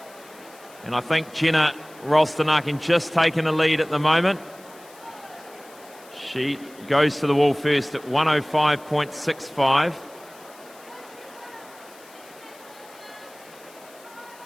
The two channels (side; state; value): left; noise; hiss, 23 dB below the sound